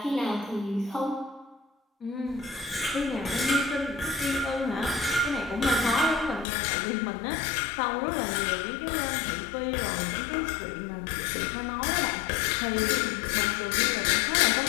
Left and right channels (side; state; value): right; drops out; at 6.5 s